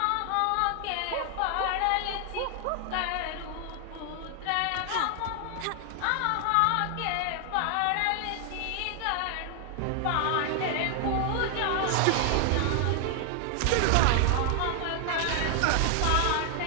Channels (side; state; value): both; different; correlation 0.00